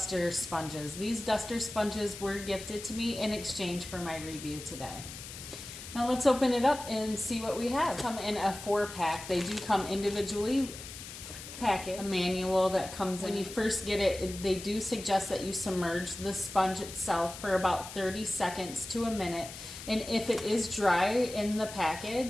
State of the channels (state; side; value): noise; left; hiss, 12 dB below the sound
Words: sponges. These duster sponges were gifted to me in exchange for my review today. Now let's open it up and see what we have. Come in a 4-pack. They do come individually packaged. A manual that comes when you first get it. They do suggest that you submerge the sponge itself for about 30 seconds to a minute. And if it is dry in the